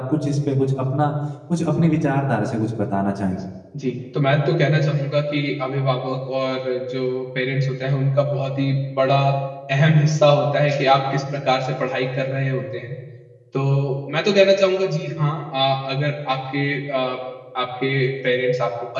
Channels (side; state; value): both; identical; correlation 1.00